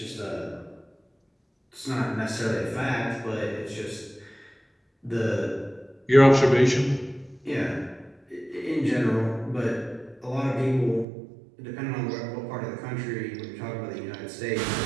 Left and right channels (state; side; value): drops out; left; at 11.1 s